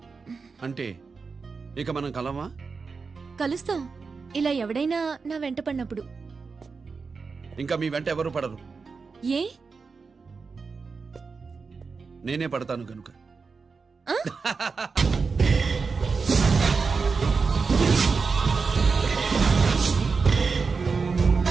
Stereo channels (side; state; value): left; quieter; 4.8 dB